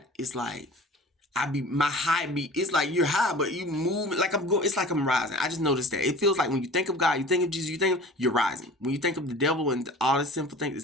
it's like my high beat. It's like you're high, but you move like I'm going. It's like I'm rising. I just noticed that. It feels like when you think of God, you think of Jesus, you think you're rising. When you think of the devil and all the sinful things,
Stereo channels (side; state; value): both; normal; correlation 0.42